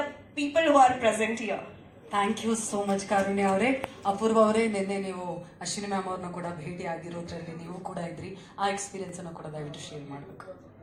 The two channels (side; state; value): both; identical; correlation 1.00